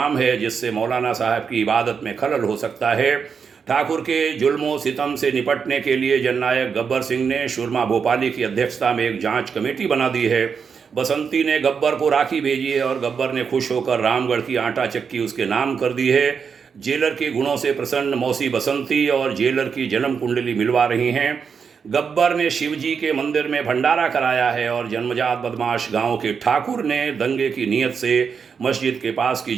है, जिससे मौलाना साहब की इबादत में खलल हो सकता है। ठाकुर के जुल्मों सितम से निपटने के लिए जननायक गब्बर सिंह ने सुरमा भोपाली की अध्यक्षता में एक जांच कमेटी बना दी है। बसंती ने गब्बर को राखी भेजी है और गब्बर ने खुश होकर रामगढ़ की आटा चक्की उसके नाम कर दी है। जेलर के गुणों से प्रसन्न मौसी बसंती और जेलर की जन्म कुंडली मिलवा रही हैं। गब्बर ने शिवजी के मंदिर में भंडारा कराया है और जन्मजात बदमाश गांव के ठाकुर ने दंगे की नीयत से मस्जिद के पास की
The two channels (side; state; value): left; quieter; 6.2 dB